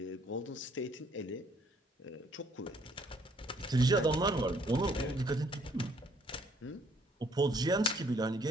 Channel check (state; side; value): normal; both; correlation 0.64